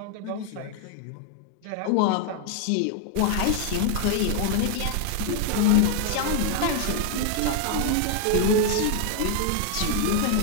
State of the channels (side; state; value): both; different; correlation 0.00